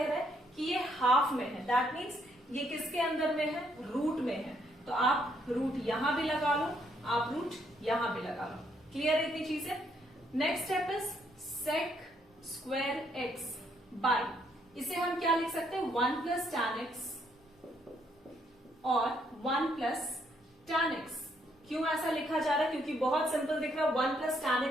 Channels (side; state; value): both; normal; correlation 0.72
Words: रहा है कि ये हाफ में है, दैट मीन्स ये किसके अंदर में है, रूट में है, तो आप रूट यहां भी लगा लो, आप रूट यहां भी लगा लो। क्लियर इतनी चीजें। Next step is sec square x by, इसे हम क्या लिख सकते हैं, 1 प्लस tan x और 1 प्लस tan x। क्यों ऐसा लिखा जा रहा है, क्योंकि बहुत सिंपल दिख रहा है, 1 प्लस tan